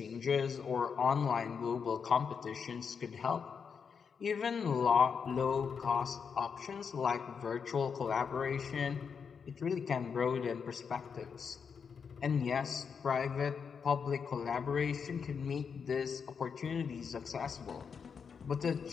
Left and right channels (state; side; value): quieter; right; 6.3 dB